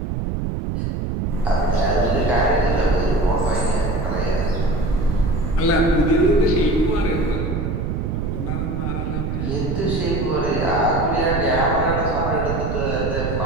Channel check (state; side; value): noise; right; rumble, 2 dB below the sound